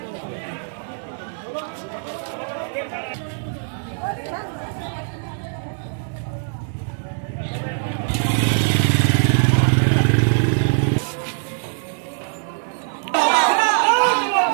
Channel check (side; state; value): left; silent; digital silence